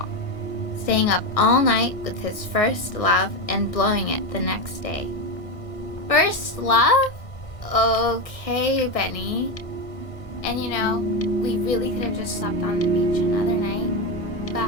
staying up all night with his first love and blowing it the next day. First love? Okay, Benny. And you know, we really could have just slept on the beach another night,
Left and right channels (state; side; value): late; right; 1.5 ms